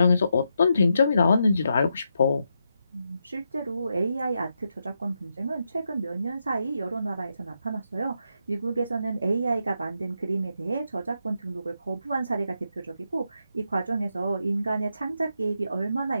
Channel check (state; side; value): inverted; both; correlation -0.83